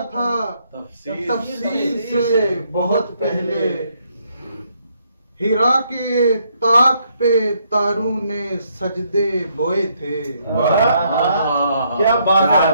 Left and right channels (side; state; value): both; inverted; correlation -0.72